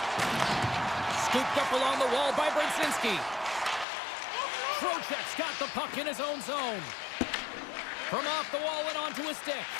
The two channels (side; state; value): right; drops out; at 3.9 s